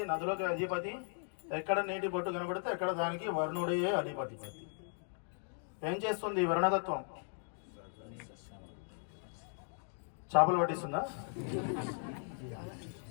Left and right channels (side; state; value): right; silent; 53 dB below the other